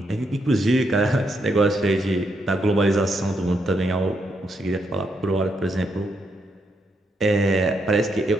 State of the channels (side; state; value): both; normal; correlation 0.78